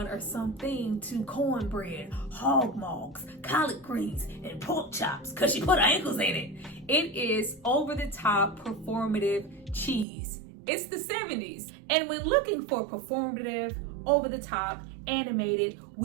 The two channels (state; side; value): drops out; left; at 10.1 s